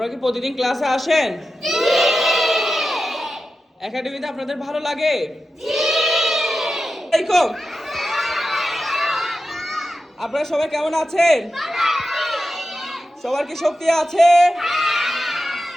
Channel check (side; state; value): both; normal; correlation 0.92